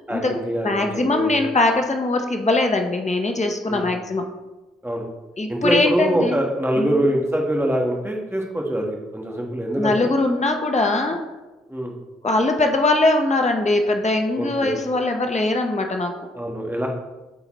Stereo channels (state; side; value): normal; both; correlation 0.70